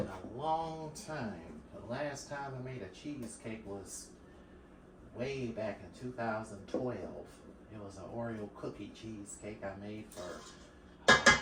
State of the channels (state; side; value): identical; both; correlation 1.00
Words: a long time. The last time I made a cheesecake was way back in 2012. It was an Oreo cookie cheesecake I made for